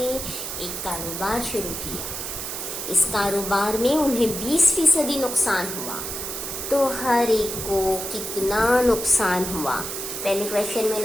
एक कारोबार शुरू किया। इस कारोबार में उन्हें 20% नुकसान हुआ। तो हर एक को कितना नुकसान हुआ? पहले क्वेश्चन में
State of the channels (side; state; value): right; noise; hiss, 5 dB below the sound